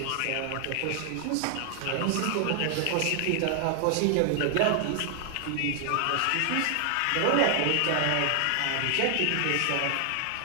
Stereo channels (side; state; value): both; different; correlation 0.00